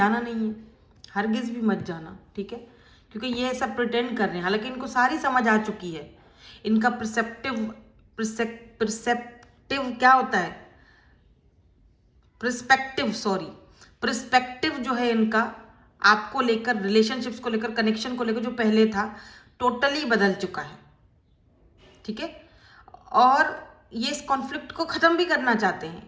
नहीं है, हरगिज भी मत जाना, ठीक है। क्योंकि ये ऐसा प्रिटेंड कर रहे हैं, हालांकि इनको सारी समझ आ चुकी है। इनका प्रिसेप्टिव क्या होता है, प्रिस्पेक्टिव जो है इनका आपको लेकर, रिलेशनशिप्स को लेकर, कनेक्शन को लेकर जो पहले था टोटली बदल चुका है, ठीक है। और ये इस कॉन्फ्लिक्ट को खत्म भी करना चाहते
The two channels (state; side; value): identical; both; correlation 1.00